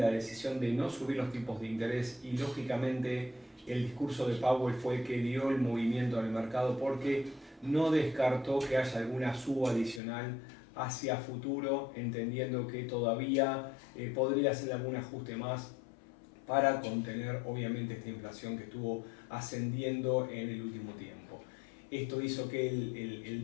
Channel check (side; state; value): right; drops out; at 10.0 s